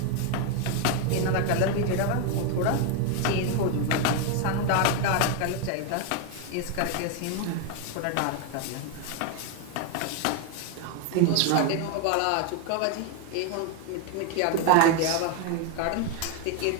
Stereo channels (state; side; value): different; both; correlation 0.01